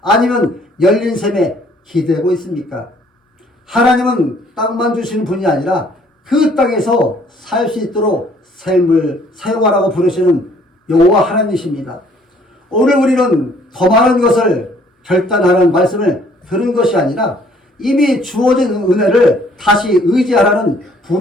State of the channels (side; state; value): both; normal; correlation 0.60